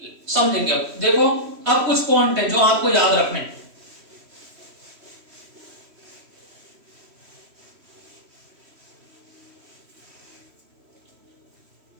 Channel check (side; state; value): left; late; 3.1 ms